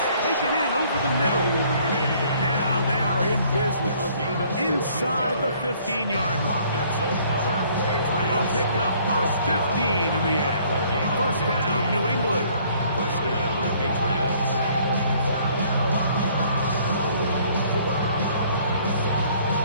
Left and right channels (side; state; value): both; inverted; correlation -0.60